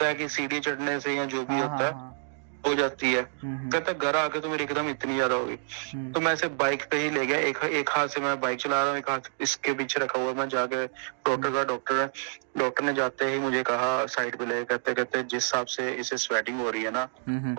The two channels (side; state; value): left; silent; digital silence